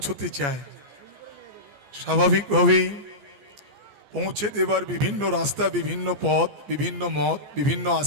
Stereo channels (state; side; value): late; left; 14 ms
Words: চায়, স্বাভাবিকভাবেই পৌঁছে দেবার বিভিন্ন রাস্তা, বিভিন্ন পথ, বিভিন্ন মত, বিভিন্ন